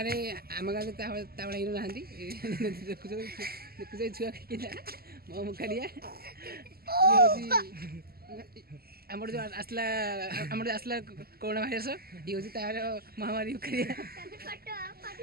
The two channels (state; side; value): late; left; 0.45 ms